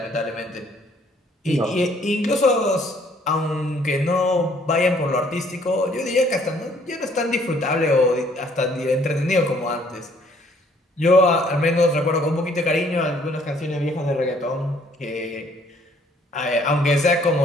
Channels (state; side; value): normal; both; correlation 0.62